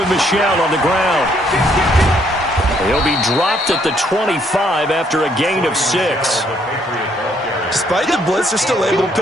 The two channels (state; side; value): normal; both; correlation 0.69